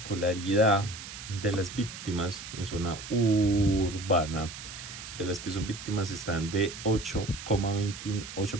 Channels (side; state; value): right; noise; hiss, 11 dB below the sound